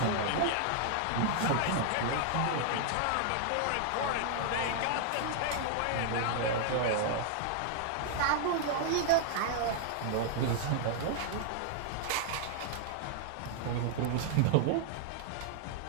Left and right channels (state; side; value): different; both; correlation 0.00